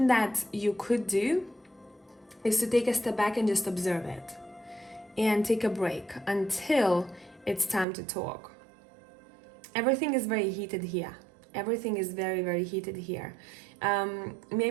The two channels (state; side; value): drops out; left; at 7.9 s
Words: that you could do is to take a step back and just observe it and take a break until it's time to talk. Everything is very heated here. Everything is very, very heated here.